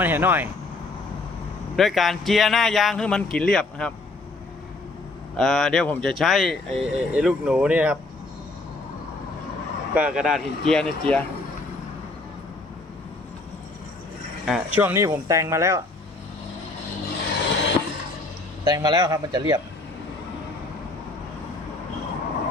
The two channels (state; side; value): quieter; right; 3.1 dB